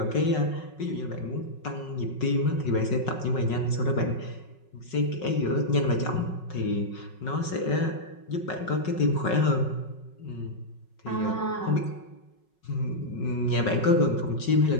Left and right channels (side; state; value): right; late; 5.4 ms